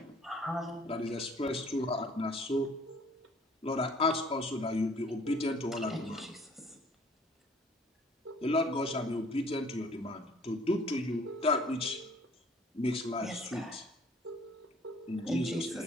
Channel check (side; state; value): both; normal; correlation 0.56